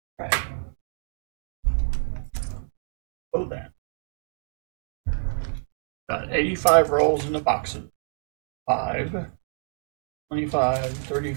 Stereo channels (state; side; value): silent; left; digital silence